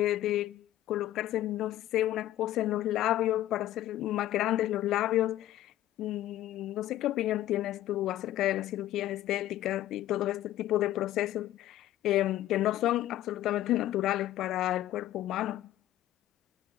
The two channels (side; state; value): right; quieter; 13.8 dB